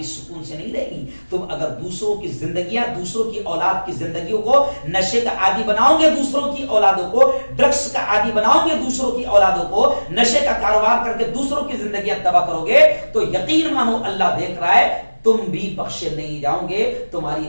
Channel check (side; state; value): both; inverted; correlation -1.00